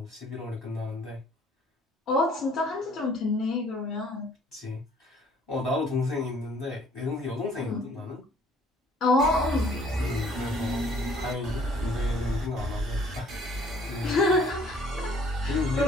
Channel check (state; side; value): normal; both; correlation 0.57